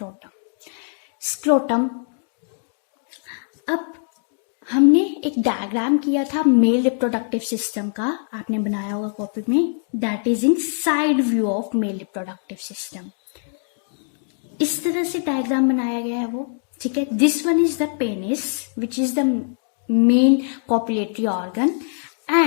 Scrotum, अब हमने एक diagram किया था male reproductive system का, आपने बनाया होगा कॉपी में, that is in side view of male reproductive system. इस तरह से डायग्राम बनाया गया है वो, ठीक है. This one is the penis which is the main copulatory organ.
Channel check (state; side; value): silent; right; 63 dB below the other